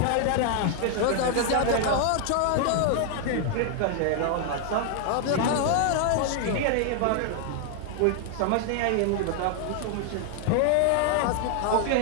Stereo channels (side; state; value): both; different; correlation 0.00